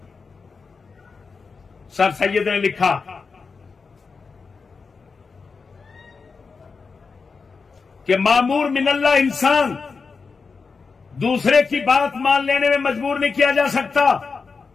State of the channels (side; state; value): right; quieter; 4.8 dB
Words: سر سید نے لکھا کہ مامور من اللہ انسان دوسرے کی بات مان لینے میں مجبور نہیں کیا جا سکتا۔